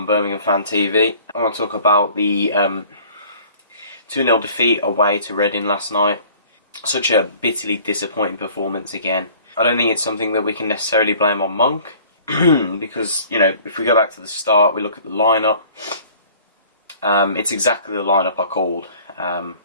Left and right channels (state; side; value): inverted; both; correlation -0.51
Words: Birmingham Fan TV. I want to talk about the 2-0 defeat away to Reading last night. Such a bitterly disappointing performance again. I don't think it's something that we can necessarily blame on Monk because, if we go back to the start, we look at the lineup. It's exactly the lineup I called.